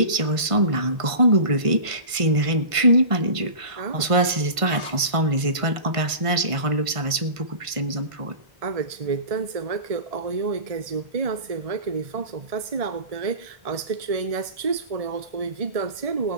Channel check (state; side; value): late; left; 1.5 ms